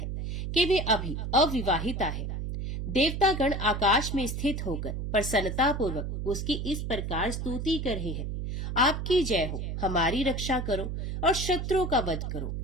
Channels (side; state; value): right; noise; hum, 4 dB below the sound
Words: कि वे अभी अविवाहिता है। देवतागण आकाश में स्थित होकर प्रसन्नता पूर्वक उसकी इस प्रकार स्तुति कर रहे हैं, आपकी जय हो, हमारी रक्षा करो और शत्रुओं का वध करो।